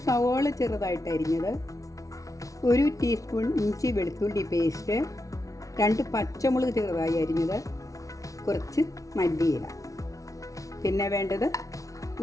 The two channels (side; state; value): right; late; 0.16 ms